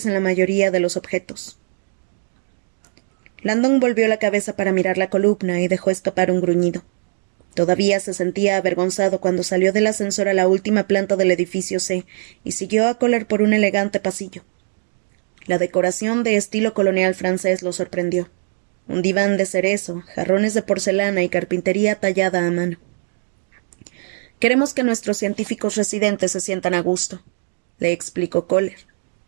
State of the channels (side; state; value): left; silent; 65 dB below the other